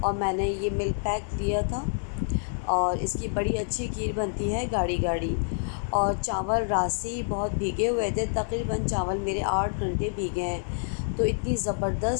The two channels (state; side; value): silent; right; digital silence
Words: اور میں نے یہ ملک پیک لیا تھا اور اس کی بڑی اچھی کھیر بنتی ہے گاڑھی گاڑھی۔ اور چاول رات سے ہی بہت بھیگے ہوئے تھے، تقریباً چاول میرے 8 گھنٹے بھیگے ہیں، تو اتنی